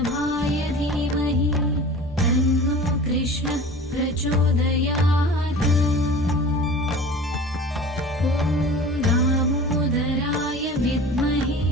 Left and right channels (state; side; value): normal; both; correlation 0.39